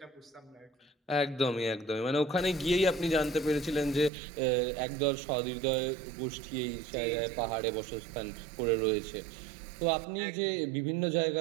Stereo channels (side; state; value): left; drops out; at 4.1 s